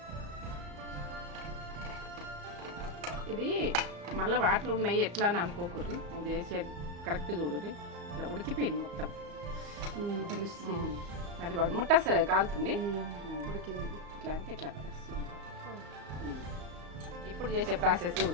ఇది మళ్ళీ వాటర్ ఉన్నాయి ఎట్లా అని అనుకోకూడదు. అది చేసేది కరెక్ట్ చూడదు. ఇట్లా ఉడికిపోయింది మొత్తం తెలుస్తుంది. అది వాడు ముట్టసలే కాలుతుంది. ఉడికింది. ఇట్లా అంటే ఇట్లా వస్తుంది. ఇప్పుడు చేసే ప్రాసెస్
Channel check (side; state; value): left; late; 34 ms